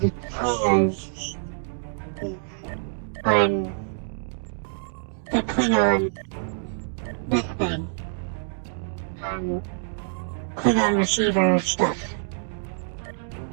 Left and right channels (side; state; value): left; silent; digital silence